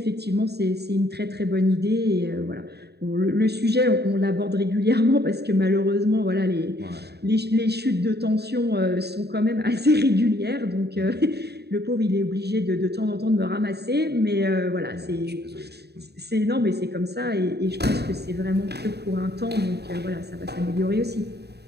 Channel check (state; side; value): late; left; 0.48 ms